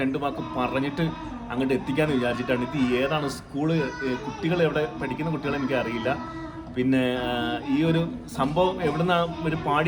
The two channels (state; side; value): identical; both; correlation 1.00